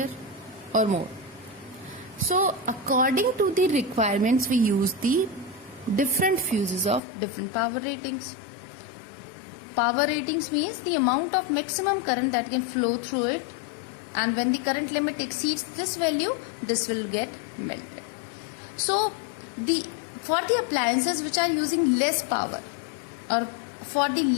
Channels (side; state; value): right; drops out; at 7.0 s